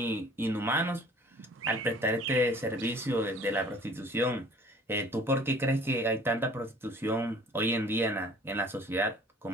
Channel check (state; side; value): normal; both; correlation 0.51